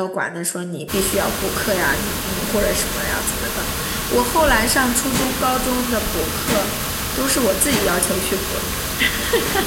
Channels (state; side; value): identical; both; correlation 1.00